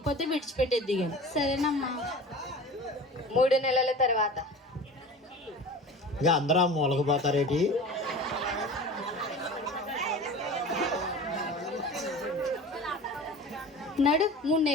విడిచిపెట్టేద్ది కానీ. సరేనమ్మా. 3 నెలల తర్వాత ఇక అందరూ మూలకపోతారేటి? నడు 3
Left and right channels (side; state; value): both; normal; correlation 0.37